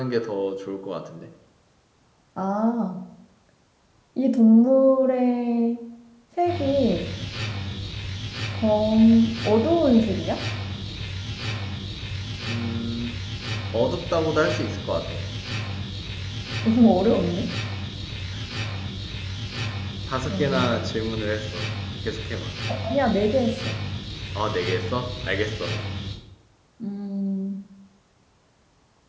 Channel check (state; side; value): identical; both; correlation 1.00